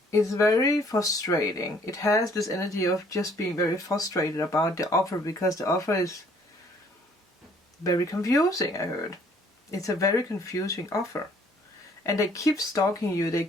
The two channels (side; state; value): both; normal; correlation 0.60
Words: very frustrating. It has this energy of just being very frustrated about the offer, because the offer is very confusing, I heard. It's a very confusing offer. And they keep stalking you, they